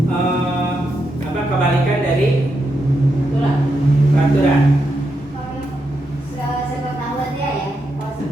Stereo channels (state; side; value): normal; both; correlation 0.84